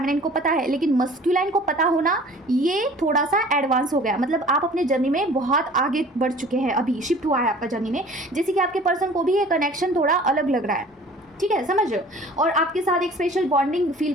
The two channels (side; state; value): both; normal; correlation 0.47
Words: को पता है, लेकिन मस्कुलाइन को पता होना ये थोड़ा सा एडवांस हो गया, मतलब आप अपने जर्नी में बहुत आगे बढ़ चुके हैं, अभी शिफ्ट हुआ है आपका जर्नी में, जैसे कि आपके पर्सन को भी ये कनेक्शन थोड़ा अलग लग रहा है, ठीक है, समझ रहे हो, और आपके साथ एक स्पेशल बॉन्डिंग फील